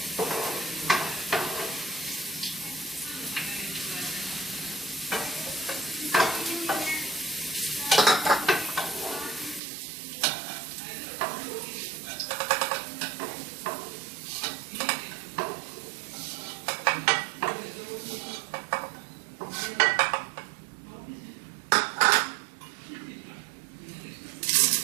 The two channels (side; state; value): left; drops out; at 9.6 s